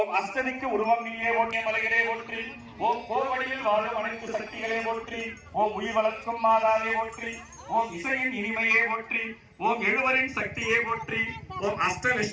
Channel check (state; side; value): identical; both; correlation 1.00